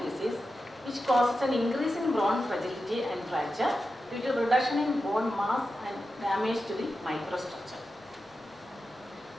disease which causes an increase in bone fragility and fracture due to reduction in bone mass and damage to the microstructure.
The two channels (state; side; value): normal; both; correlation 0.91